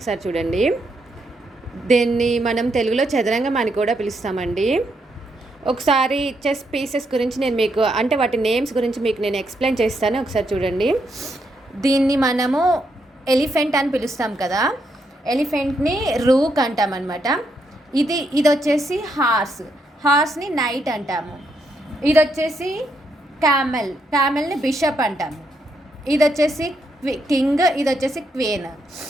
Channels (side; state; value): both; normal; correlation 0.78